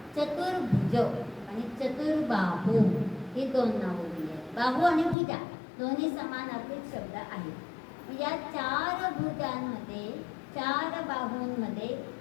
चतुर्भुज आणि चतुर्बाहू ही 2 नावं दिली आहेत. बाहू आणि भुजा दोन्ही समानार्थी शब्द आहेत. या 4 भुजांमध्ये, 4 बाहूंमध्ये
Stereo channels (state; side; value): drops out; right; at 5.2 s